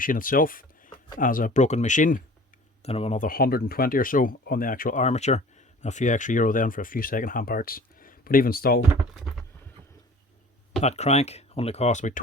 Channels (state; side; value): normal; both; correlation 0.45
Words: itself as a broken machine, then another 120 or so on the actual armature, and a few extra euro then for a few second-hand parts. But even still, that crank only cost about